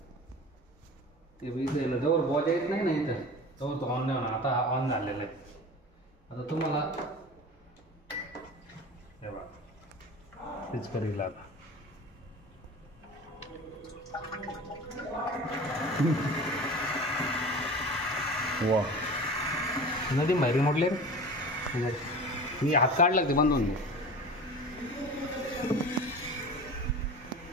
ते इथं जवळ बॉजा येत नाही ना इथं जवळ तो ऑन नाही होणार. आता ऑन झालेला आहे. आता तुम्हाला हे बघा तेच करील आता. वा नदी बाहेर मोडले रे. मी हात काढला ते बंद होऊन दे.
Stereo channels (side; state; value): both; normal; correlation 0.36